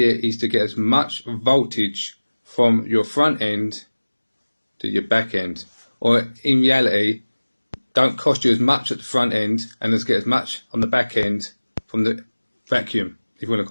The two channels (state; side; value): inverted; both; correlation -1.00